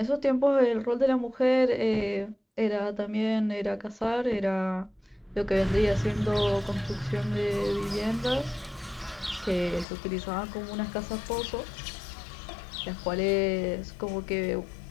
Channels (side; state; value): right; drops out; at 9.9 s